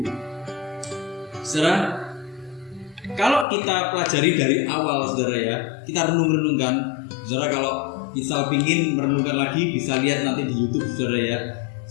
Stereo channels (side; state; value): right; drops out; at 3.5 s